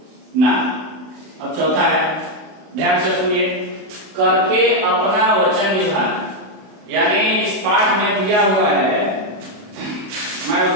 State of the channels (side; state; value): left; late; 32 ms